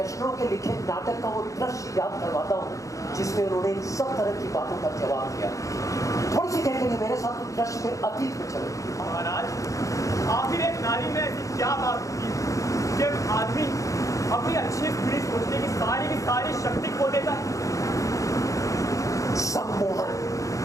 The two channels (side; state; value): right; late; 0.16 ms